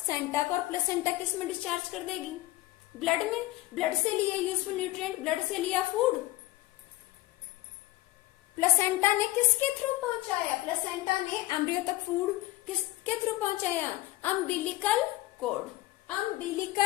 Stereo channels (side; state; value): right; quieter; 17.9 dB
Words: को, और प्लेसेंटा किस में डिस्चार्ज कर देगी, ब्लड में। ब्लड से लिए यूजफुल न्यूट्रिएंट, ब्लड से लिया फूड, प्लेसेंटा ने किसके थ्रू पहुंचाया, प्लेसेंटा ने एम्ब्रियो तक फूड किसके थ्रू पहुंचाया, umbilical cord,